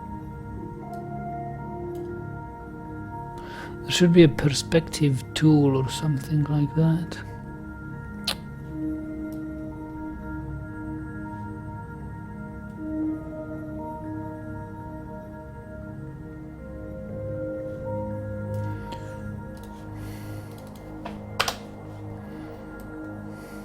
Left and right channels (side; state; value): both; identical; correlation 1.00